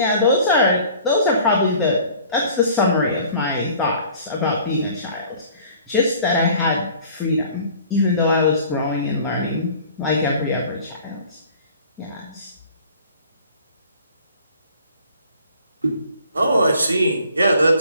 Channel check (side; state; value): both; inverted; correlation -0.50